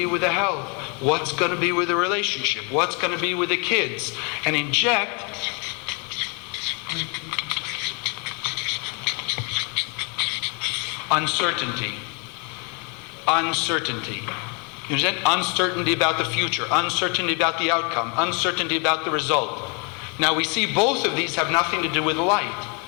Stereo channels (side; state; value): right; quieter; 33.7 dB